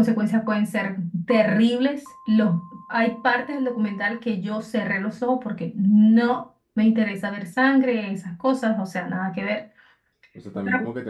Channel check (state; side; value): identical; both; correlation 1.00